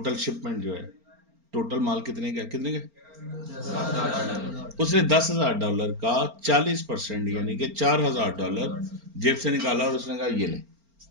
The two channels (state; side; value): late; left; 4.4 ms